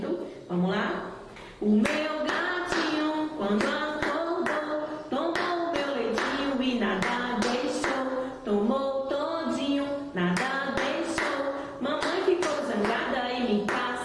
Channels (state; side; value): identical; both; correlation 1.00